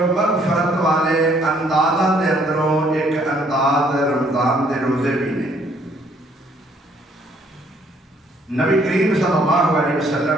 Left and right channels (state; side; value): normal; both; correlation 0.65